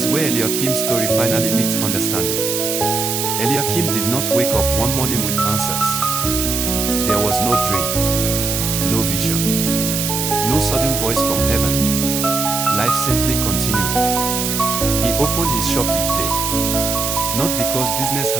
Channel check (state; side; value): noise; right; hiss, 1 dB below the sound